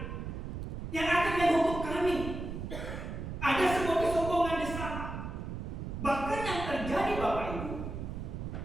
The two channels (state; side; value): noise; right; rumble, 6 dB below the sound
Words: yang akan menghukum kami? Ada sebuah kesombongan di sana. Bahkan yang terjadi Bapak Ibu,